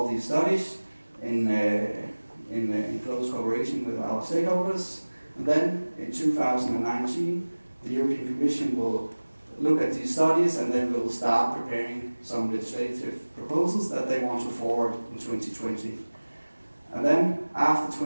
these studies in close cooperation with our stakeholders. And then in 2019, the European Commission will look at these studies, and then we'll start preparing some legislative proposals that they want to forward in 2020. And then after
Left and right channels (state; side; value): inverted; both; correlation -1.00